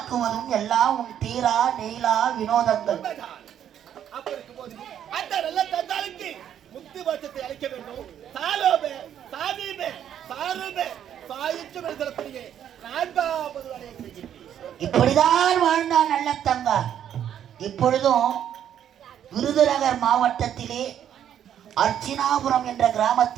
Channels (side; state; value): left; quieter; 9.9 dB